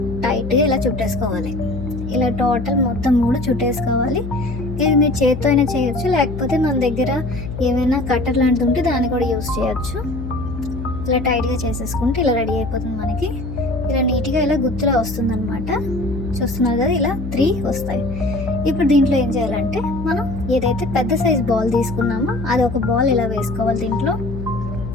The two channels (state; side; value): noise; left; hum, 7 dB below the sound